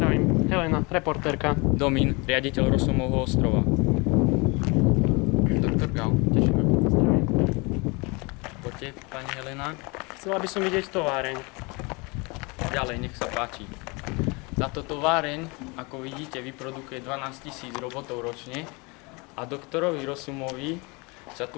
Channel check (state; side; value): quieter; right; 28.3 dB